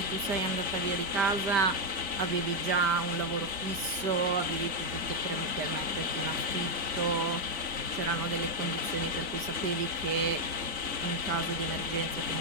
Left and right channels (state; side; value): late; left; 5.1 ms